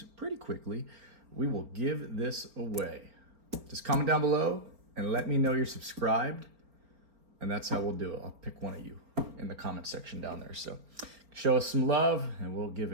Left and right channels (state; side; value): late; left; 4.5 ms